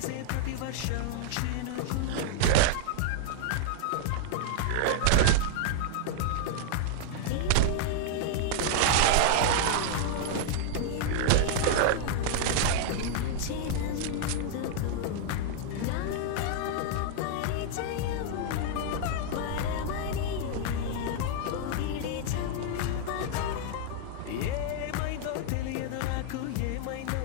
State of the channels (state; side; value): different; both; correlation -0.01